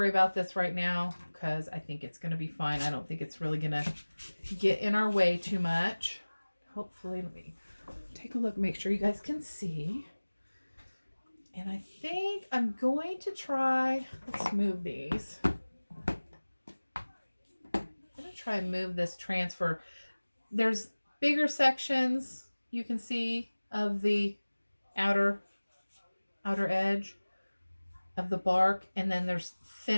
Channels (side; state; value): both; inverted; correlation -1.00